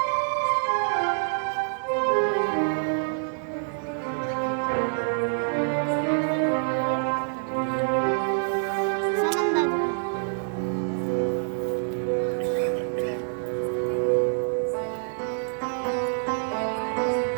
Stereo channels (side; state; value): left; silent; 61 dB below the other